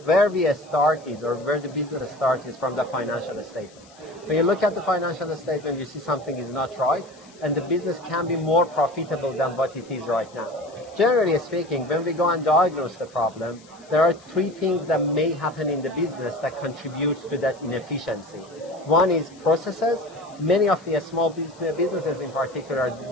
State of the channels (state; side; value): noise; left; hiss, 26 dB below the sound